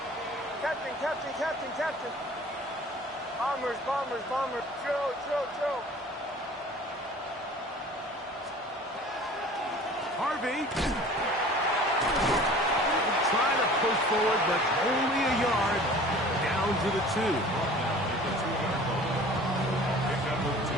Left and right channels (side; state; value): both; normal; correlation 0.45